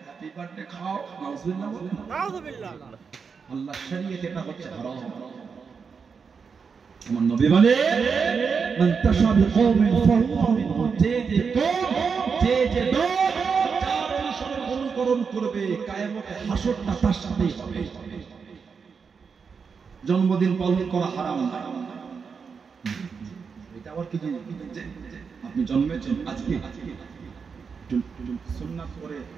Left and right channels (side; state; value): left; quieter; 5.7 dB